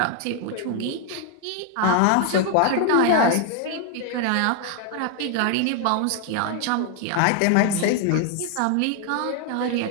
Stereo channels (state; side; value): different; both; correlation 0.00